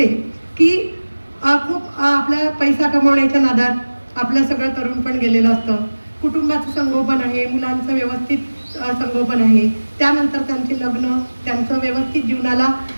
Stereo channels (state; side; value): inverted; both; correlation -1.00